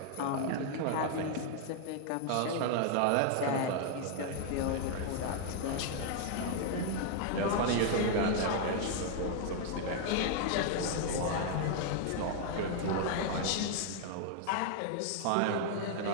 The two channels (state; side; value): different; both; correlation 0.00